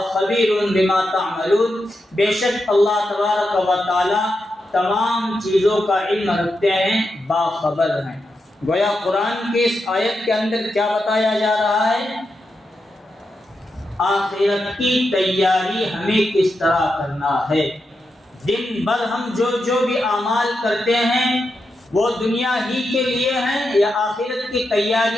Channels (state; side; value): normal; both; correlation 0.87